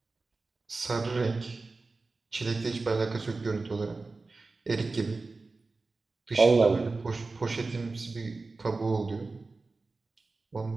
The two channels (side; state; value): left; quieter; 3.7 dB